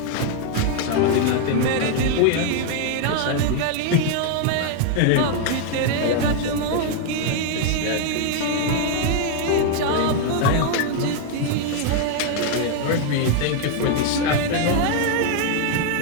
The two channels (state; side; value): different; both; correlation 0.00